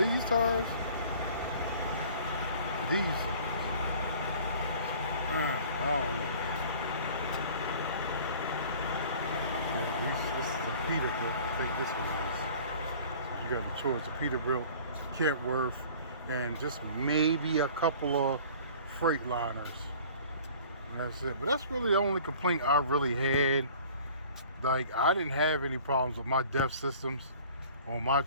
tires to these tires. I don't know. This is a Peterbilt. I think this one is. So you got the choice of Peterbilt, Kentworth, and just maybe a couple of Freightliners. And that's it. But that's really the only complaint I really had. Like, I didn't have any problems with my DEF systems on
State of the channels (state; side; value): inverted; both; correlation -0.47